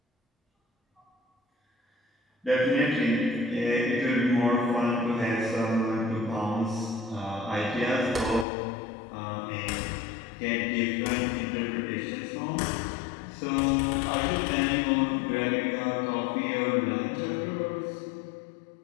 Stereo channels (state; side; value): drops out; right; at 8.5 s